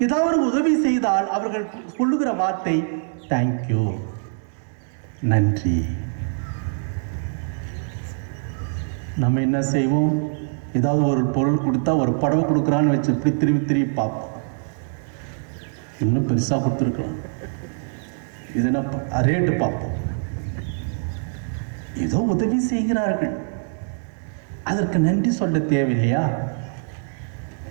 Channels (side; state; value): left; silent; 63 dB below the other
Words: ஏதாவது உதவி செய்தால் அவர்கள் சொல்லுகிற வார்த்தை தேங்க்யூ, நன்றி. நம்ம என்ன செய்வோம்? ஏதாவது ஒரு பொருள் கொடுத்தா, ஒரு புடவை கொடுக்குறான்னு வச்சு இப்படி திரும்பி பார்ப்போம், இன்னும் பெருசாக கொடுத்துருக்கலாம், இதுனா ரேட்டு பார்ப்போம். ஏதோ உதவி செய்கிறார்கள், அதற்கு நன்றி சொல்ல தேவையில்லையா?